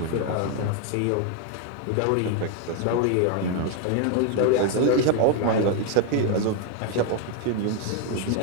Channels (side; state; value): both; different; correlation 0.01